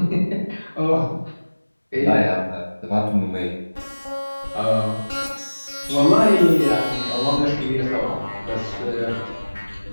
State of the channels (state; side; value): inverted; both; correlation -1.00